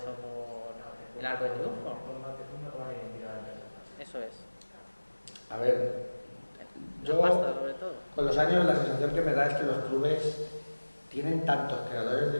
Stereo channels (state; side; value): inverted; both; correlation -1.00